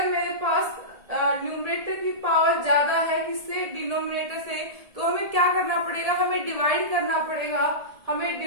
मेरे पास न्यूमरेटर की पावर ज्यादा है किससे? डिनोमिनेटर से, तो हमें क्या करना पड़ेगा? हमें डिवाइड करना पड़ेगा। हमें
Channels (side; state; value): left; late; 1.7 ms